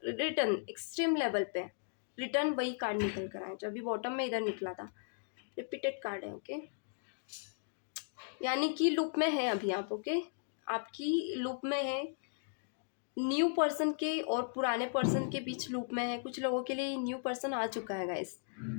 return extreme level पे, रिटर्न वही कार्ड निकल कर आए जो अभी बॉटम में इधर निकला था, रिपीटेड कार्ड है। ओके, यानी कि लूप में है अभी आप। ओके, आपकी लूप में है, न्यू पर्सन के और पुराने पर्सन के बीच लूप में है। कुछ लोगों के लिए ये न्यू पर्सन आ चुका है गाइस,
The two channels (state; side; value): silent; right; digital silence